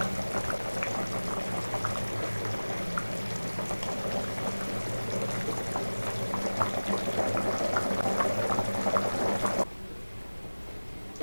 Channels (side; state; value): both; inverted; correlation -1.00